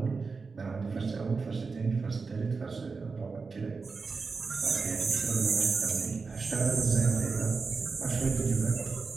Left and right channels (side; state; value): left; quieter; 4.6 dB